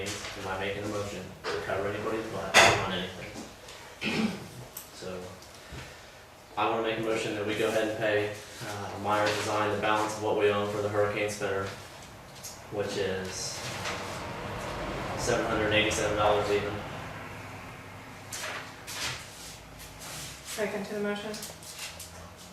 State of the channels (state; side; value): identical; both; correlation 1.00